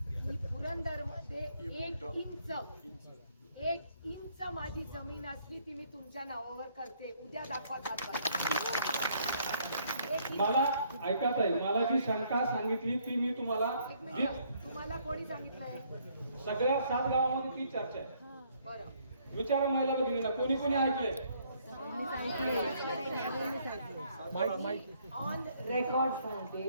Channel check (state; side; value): inverted; both; correlation -0.67